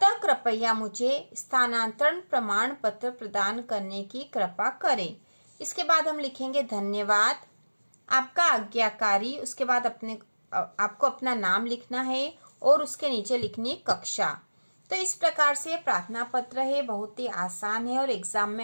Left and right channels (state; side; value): inverted; both; correlation -1.00